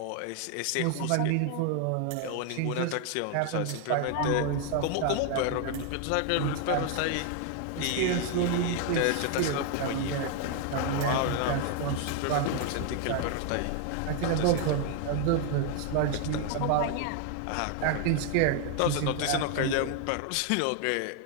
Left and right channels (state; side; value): different; both; correlation 0.00